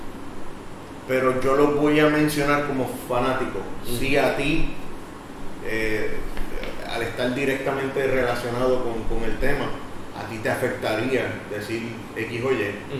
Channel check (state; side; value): identical; both; correlation 1.00